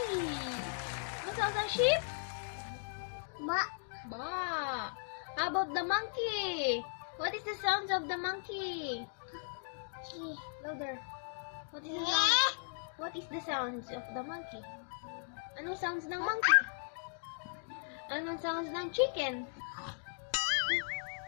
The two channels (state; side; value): silent; right; digital silence